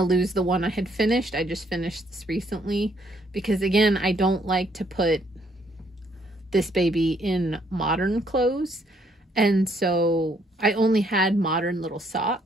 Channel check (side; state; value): both; normal; correlation 0.69